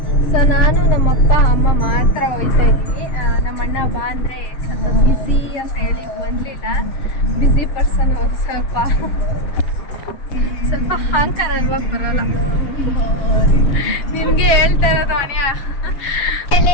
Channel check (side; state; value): right; late; 7.0 ms